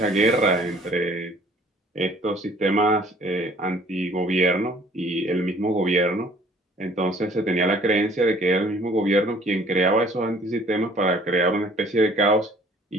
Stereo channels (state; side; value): normal; both; correlation 0.55